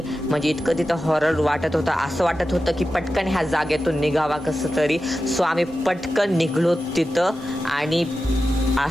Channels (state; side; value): normal; both; correlation 0.92